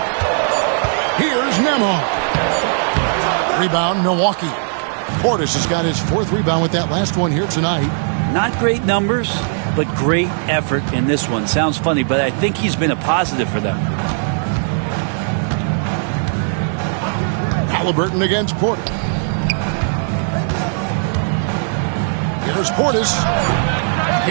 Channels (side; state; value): left; silent; 65 dB below the other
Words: Here's Nembhard. Rebound, Milwaukee. Portis has got his 4th rebound with that last one here tonight. Not great numbers, but great effort in this one. Sounds funny, but I think he's been a positive for them. Haliburton against Porter. Here's Portis.